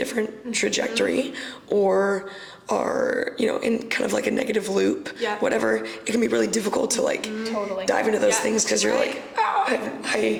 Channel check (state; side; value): identical; both; correlation 1.00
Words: trajectory, or are in kind of like a negative loop, whatever, it can be really difficult to like dive into those things, because you're like,